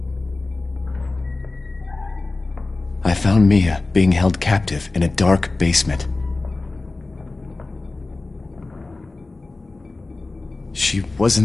I found Mia being held captive in a dark basement. She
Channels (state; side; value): quieter; right; 3.3 dB